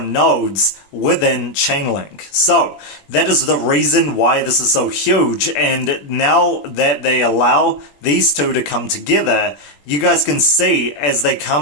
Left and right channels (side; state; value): right; late; 21 ms